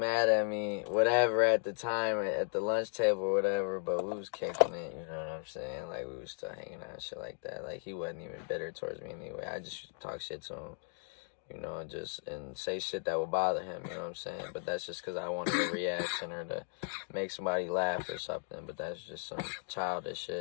at me, whatever, at the time, at the lunch table or whatever, but we was kicking it, you know what I'm saying? Like, we was still hanging out and shit like that. Like, he wasn't even bitter towards me anyway. I just talk shit to him, you know, and say shit that would bother him, you know what I'm saying? But that's just because I wanted a reaction or to make somebody laugh or something, but that's just some childish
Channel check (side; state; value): right; silent; 54 dB below the other